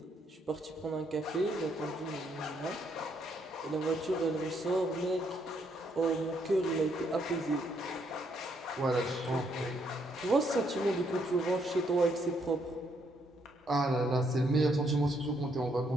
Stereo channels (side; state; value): both; normal; correlation 0.73